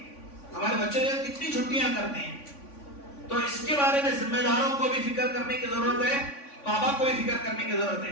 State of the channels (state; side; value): late; right; 3.5 ms